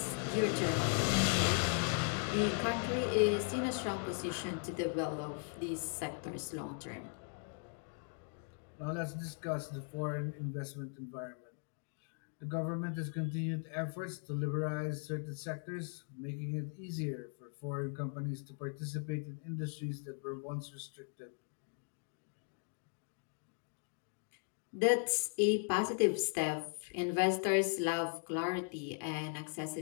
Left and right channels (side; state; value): right; silent; 52 dB below the other